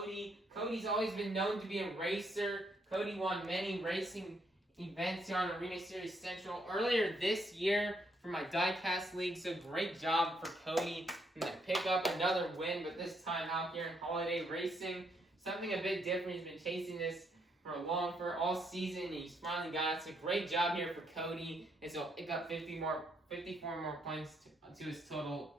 Cody's always been known to be a racer. Cody won many racing events here on Arena Series Central earlier this year for my Diecast League, so great job for Cody to pick up another win, but this time out here in Holiday Racing. Something a bit different. He's been chasing this for all season, and he's finally got it. So great job here for Cody, and so pick up 54 more points to his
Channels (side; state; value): both; normal; correlation 0.74